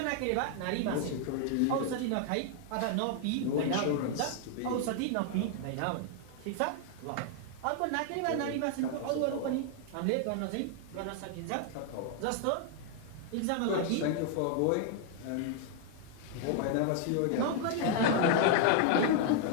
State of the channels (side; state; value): both; different; correlation 0.00